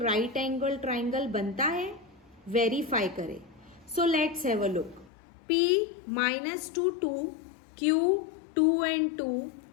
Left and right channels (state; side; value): drops out; right; at 5.1 s